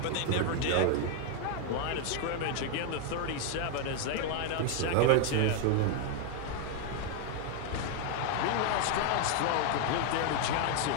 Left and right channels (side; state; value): both; different; correlation 0.01